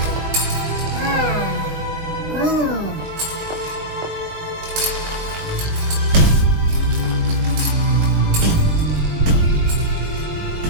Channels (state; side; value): late; left; 21 ms